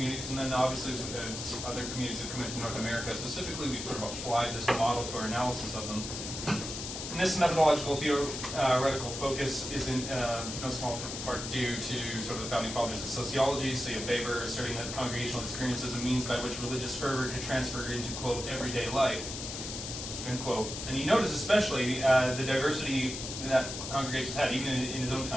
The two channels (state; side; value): noise; left; hiss, 7 dB below the sound